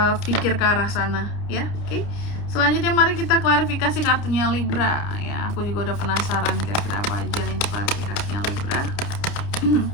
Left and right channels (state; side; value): late; right; 29 ms